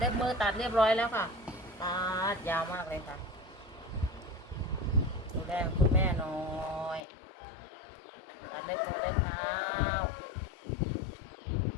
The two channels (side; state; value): right; drops out; at 7.1 s